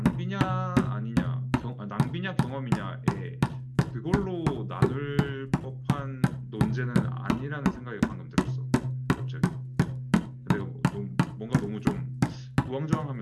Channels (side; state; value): both; identical; correlation 1.00